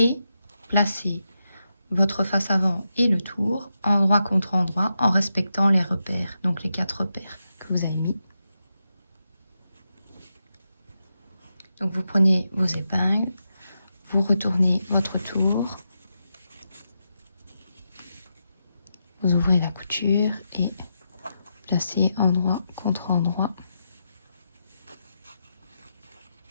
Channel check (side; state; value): both; inverted; correlation -0.86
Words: placer votre face avant et le tour endroit contre endroit en respectant les repères, donc les 4 repères que vous avez mis. Donc vous prenez vos épingles, vous retournez votre tour, vous ouvrez la couture et placez endroit contre endroit.